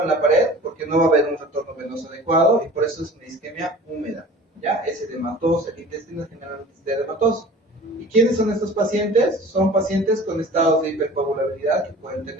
en la pared, porque no va a haber un retorno venoso adecuado, y por eso es una isquemia húmeda, ¿ya? Es edematoso, el intestino generalmente es edematoso. ¿Y quiénes son estos pacientes? Son pacientes con estados de hipercoagulabilidad que pueden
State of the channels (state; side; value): normal; both; correlation 0.43